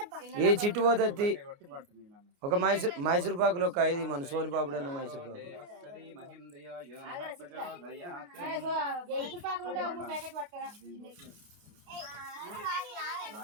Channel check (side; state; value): left; late; 29 ms